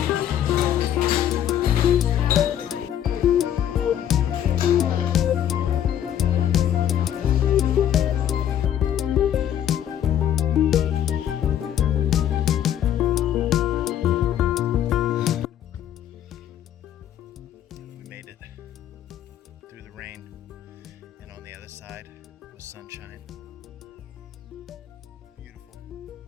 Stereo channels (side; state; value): right; quieter; 10.4 dB